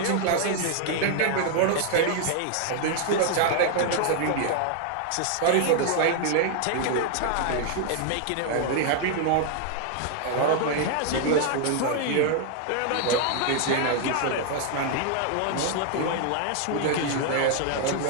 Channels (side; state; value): both; different; correlation 0.00